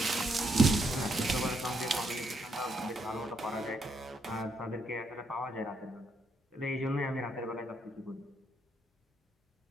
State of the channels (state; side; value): normal; both; correlation 0.76